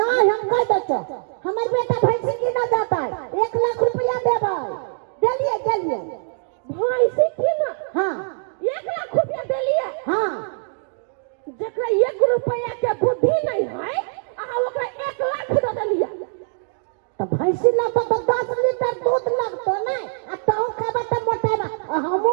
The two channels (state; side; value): silent; left; 64 dB below the other